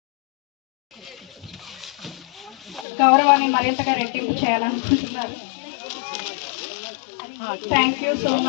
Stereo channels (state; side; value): drops out; right; at 2.9 s